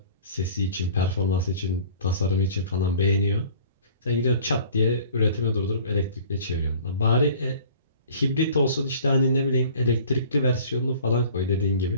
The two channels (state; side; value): inverted; both; correlation -0.48